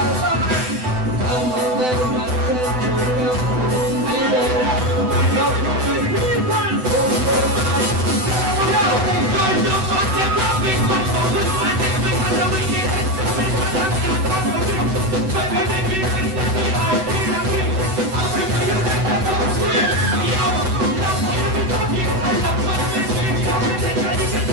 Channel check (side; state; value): left; late; 7.9 ms